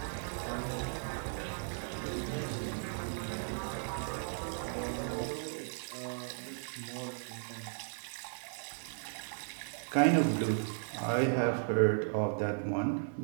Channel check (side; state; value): left; silent; 54 dB below the other